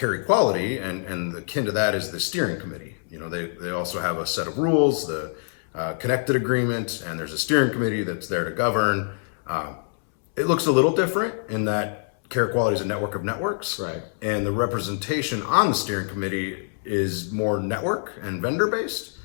equality, and akin to that is the steering committee. You know, they also have a set of rules, the connected agreement, and there's a steering committee that's there to govern. It looks a little different in that care equality is a network of networks, right? And the representation on the steering committee is more network and vendor based,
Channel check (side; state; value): right; silent; 62 dB below the other